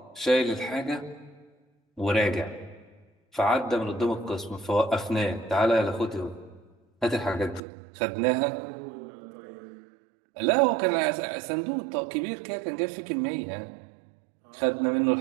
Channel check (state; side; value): drops out; left; at 7.6 s